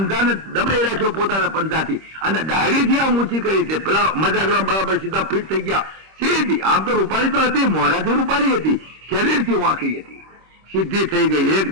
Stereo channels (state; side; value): late; left; 26 ms